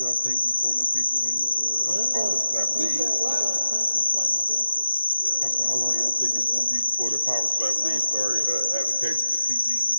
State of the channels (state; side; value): inverted; both; correlation -0.91